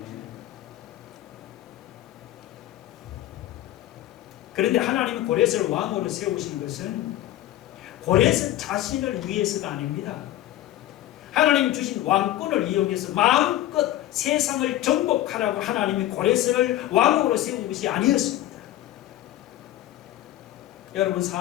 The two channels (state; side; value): quieter; right; 14.1 dB